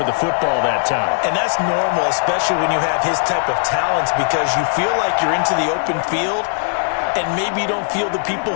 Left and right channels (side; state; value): right; silent; 55 dB below the other